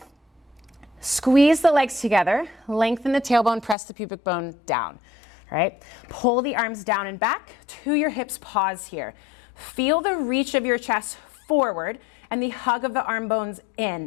Squeeze the legs together, lengthen the tailbone, press the pubic bone down. Right? Pull the arms down and back to your hips, pause here. Feel the reach of your chest forward and the hug of the arm bones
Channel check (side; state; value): right; drops out; at 3.8 s